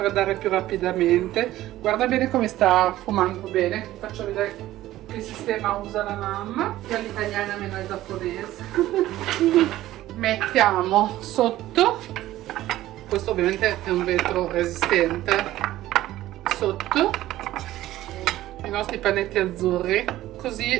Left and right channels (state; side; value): quieter; left; 15.0 dB